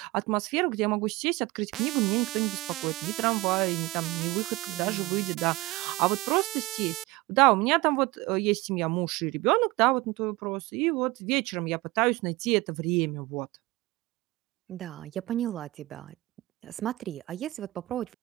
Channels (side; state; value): left; quieter; 20.7 dB